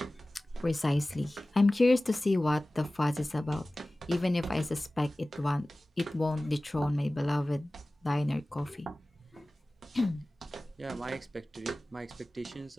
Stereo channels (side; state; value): both; normal; correlation 0.97